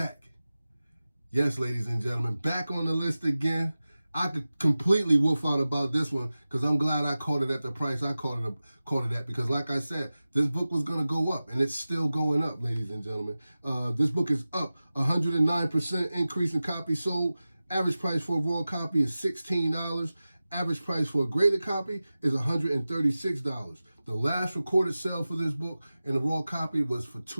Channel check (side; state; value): both; inverted; correlation -0.96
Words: Yes, ladies and gentlemen, back on the list again. I could completely wolf out about this one because I'm glad I caught it at the price I caught it at because, like I said, this book was going to go up, and it's still going up, ladies and gentlemen. This book is up 109% increase in copies sold. Average price for a raw copy is $16. Average price for a graded copy is $136. The last recorded sale for this book in a raw copy was for